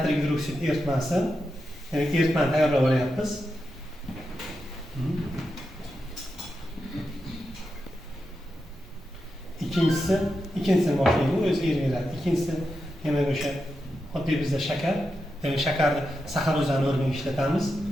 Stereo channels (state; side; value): normal; both; correlation 0.88